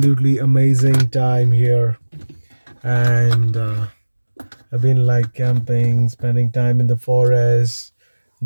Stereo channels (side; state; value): both; inverted; correlation -1.00